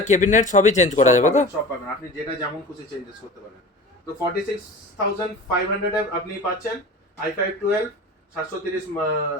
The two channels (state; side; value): normal; both; correlation 0.36